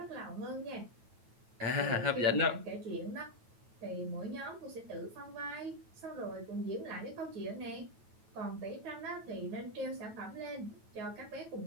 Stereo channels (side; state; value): left; late; 9.1 ms